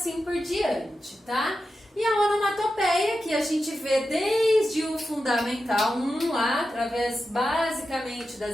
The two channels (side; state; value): both; normal; correlation 0.90